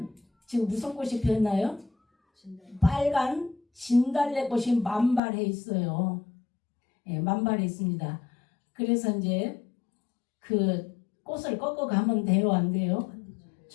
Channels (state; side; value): drops out; right; at 5.2 s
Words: 지금 무슨 꽃이 피었나요? 빨간 진달래꽃이 만발해 있어요. 예, 만발해 있습니다. 그래서 이제 그 꽃을 꺾어 가면 돼요, 안 돼요?